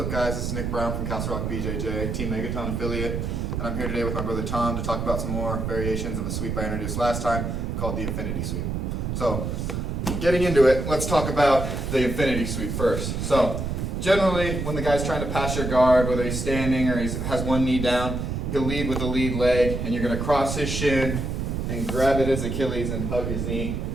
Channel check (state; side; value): noise; right; rumble, 2 dB below the sound